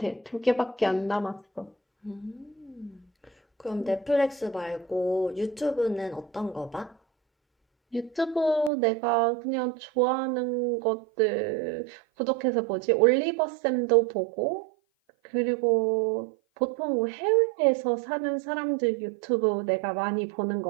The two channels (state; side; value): drops out; left; at 8.7 s